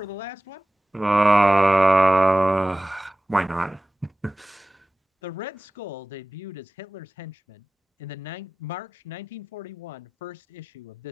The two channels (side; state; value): both; normal; correlation 0.96